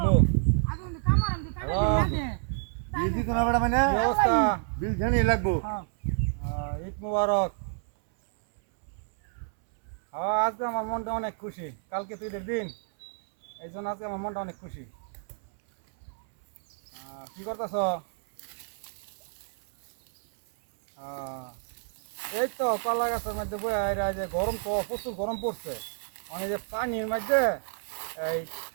বিল দিত না বেটা মানে কি অবস্থা বিল জানি লাগবো ঈদ মুবারক আজকে আমার মনটা অনেক খুশি কালকে তো ঈদের দিন এই জন্য আজকে আমার মনটা অনেক খুশি কি করতেছ এই তো কলা গাছের মধ্যে বইয়া যে গরম তো প্রচুর গরম পড়ছে মানে যে পানির মধ্যে এই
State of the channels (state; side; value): silent; left; 59 dB below the other